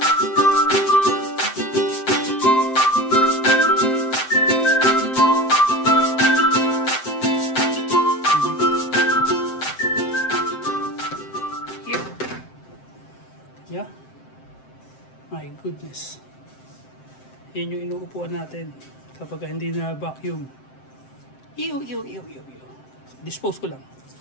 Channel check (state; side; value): late; right; 7.7 ms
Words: Yeah. My goodness. Yan yung inuupuan natin kapag hindi na vacuum. Ew. Dispose ko lang.